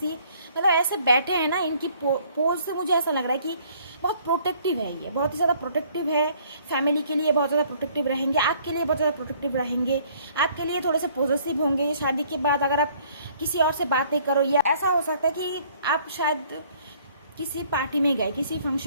ये मतलब ऐसे बैठे हैं ना, इनकी पोज से मुझे ऐसा लग रहा है कि बहुत प्रोटेक्टिव है, ये बहुत ही ज़्यादा प्रोटेक्टिव है। फैमिली के लिए बहुत ज़्यादा प्रोटेक्टिव रहेंगे, आपके लिए बहुत ज़्यादा प्रोटेक्टिव रहेंगे, आपके लिए थोड़े से पॉजिटिव होंगे। शादी के बाद अगर आप किसी और से बातें करो, या ऐसा हो सकता है कि आप शायद किसी पार्टी में गए, किसी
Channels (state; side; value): inverted; both; correlation -0.60